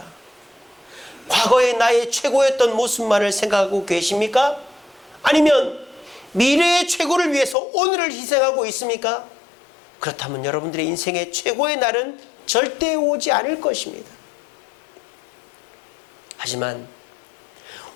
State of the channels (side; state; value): right; drops out; at 7.6 s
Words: 과거의 나의 최고였던 모습만을 생각하고 계십니까? 아니면 미래의 최고를 위해서 오늘을 희생하고 있습니까? 그렇다면 여러분들의 인생의 최고의 날은 절대 오지 않을 것입니다. 하지만